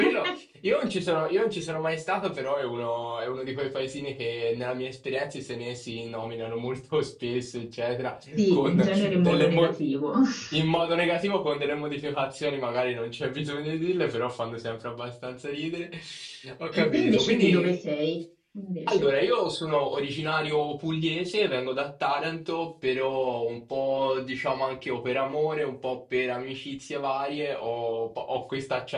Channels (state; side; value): identical; both; correlation 1.00